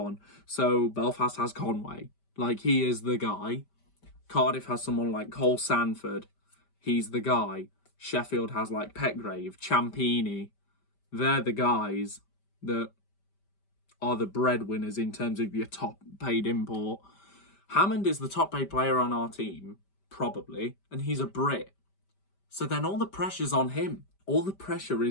So Belfast has Conway, like he is the guy. Cardiff has someone like Cole Sanford, he's the guy. Sheffield has like Petgrave, Ciampini. They're the guys that are the breadwinners in terms of your top paid import. Hammond is the top paid player on our team, probably, and he's a Brit. So then all the pressure's on him. All the pressure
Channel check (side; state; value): right; late; 5.1 ms